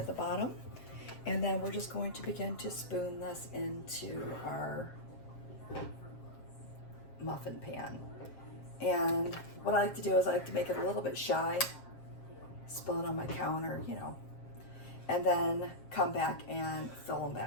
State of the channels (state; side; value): late; right; 7.5 ms